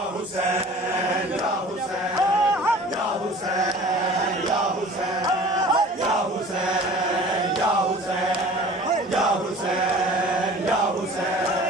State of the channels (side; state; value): both; normal; correlation 0.45